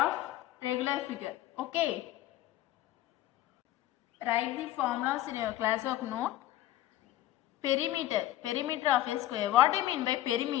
regular figure. Okay. Write the formulas in your class work note. Perimeter of a square. What do you mean by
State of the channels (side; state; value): right; quieter; 14.3 dB